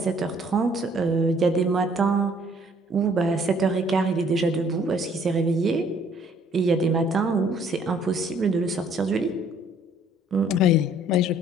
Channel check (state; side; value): normal; both; correlation 0.60